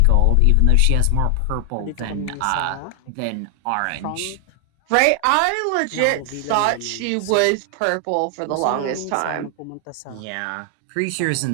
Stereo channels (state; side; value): different; both; correlation 0.00